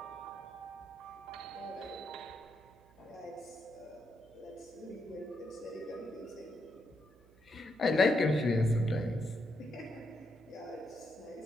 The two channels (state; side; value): noise; right; hum, 27 dB below the sound